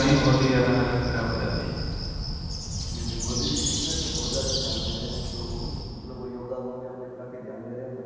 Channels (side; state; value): both; identical; correlation 1.00